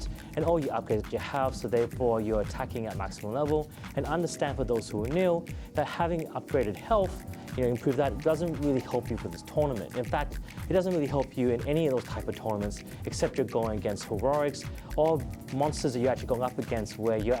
and all your upgrades that you have, so therefore you're attacking at maximum level. And understand, for those who are new, that having upgraded health, improve that, doesn't really help you for this tournament. In fact, it doesn't really help you in any of those type of tournaments, except you're going against heroics or monsters that you're actually going up against where you're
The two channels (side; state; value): both; identical; correlation 1.00